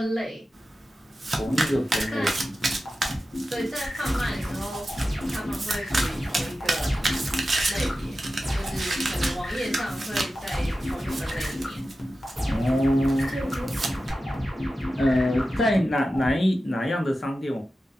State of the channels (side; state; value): both; normal; correlation 0.93